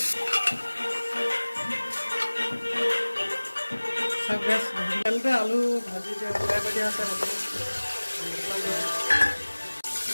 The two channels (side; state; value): both; inverted; correlation -1.00